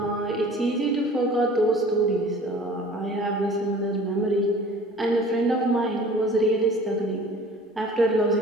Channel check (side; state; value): both; normal; correlation 0.47